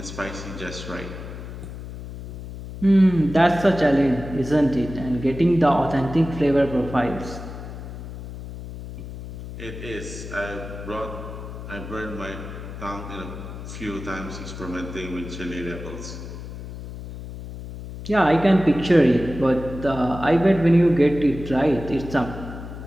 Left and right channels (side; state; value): left; noise; hum, 11 dB below the sound